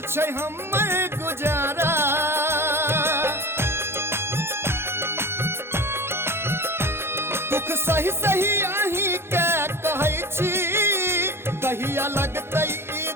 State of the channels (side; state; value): left; late; 0.12 ms